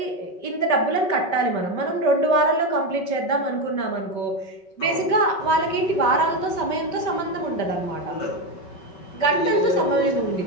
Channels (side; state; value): right; late; 5.1 ms